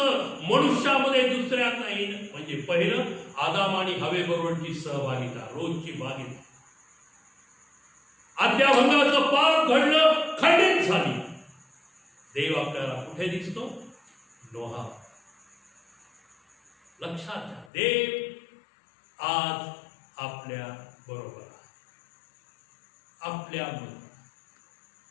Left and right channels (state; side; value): drops out; right; at 17.7 s